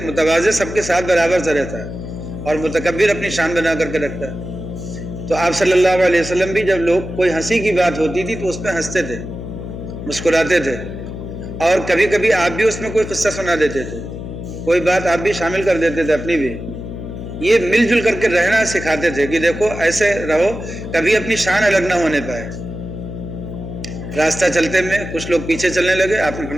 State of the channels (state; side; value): noise; left; hum, 9 dB below the sound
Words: متواضع سب کے ساتھ برابر سے رہتا ہے اور متکبر اپنی شان بنا کر کے رکھتا ہے. تو آپ صلی اللہ علیہ وسلم بھی جب لوگ کوئی ہنسی کی بات ہوتی تھی تو اس پہ ہنستے تھے، مسکراتے تھے. اور کبھی کبھی آپ بھی اس میں کوئی قصہ سنا دیتے تھے، کوئی بات آپ بھی شامل کر دیتے تھے اپنی بھی. یہ مل جل کر کے رہنا سکھاتے تھے کہ دیکھو ایسے رہو کبھی اپنی شان الگ نہ ہونے پائے. راستہ چلتے میں کچھ لوگ پیچھے چلنے لگے، آپ نے